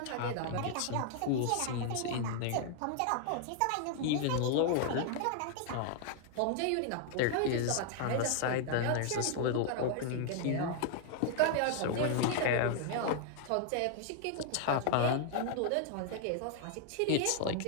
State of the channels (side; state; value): both; different; correlation 0.00